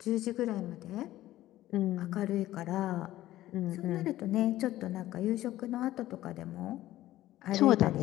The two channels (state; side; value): quieter; right; 14.9 dB